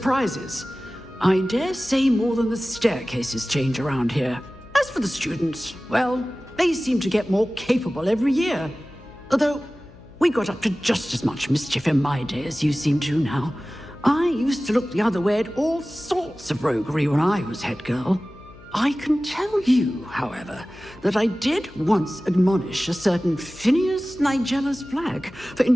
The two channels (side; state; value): left; noise; hum, 22 dB below the sound